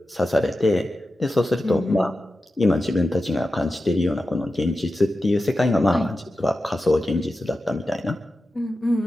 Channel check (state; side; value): normal; both; correlation 0.92